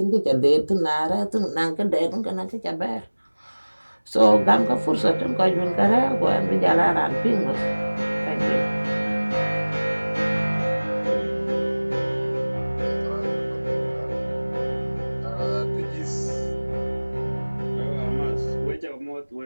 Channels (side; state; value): both; inverted; correlation -1.00